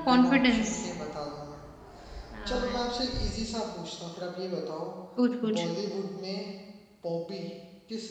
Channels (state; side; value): identical; both; correlation 1.00